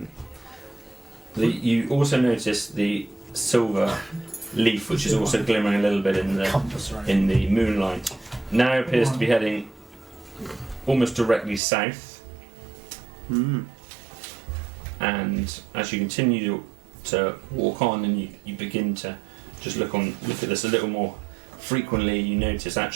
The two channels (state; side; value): drops out; left; at 11.6 s